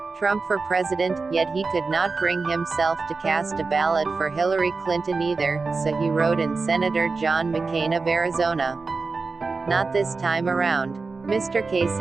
Trump for president, yet he could not bring himself to cast a ballot for Hillary Clinton either, so he wrote in Senator John McCain of Arizona. Not this time around. Mr.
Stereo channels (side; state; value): left; quieter; 4.2 dB